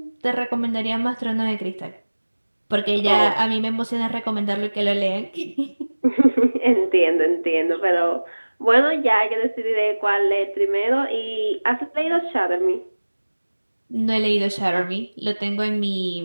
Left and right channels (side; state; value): both; inverted; correlation -1.00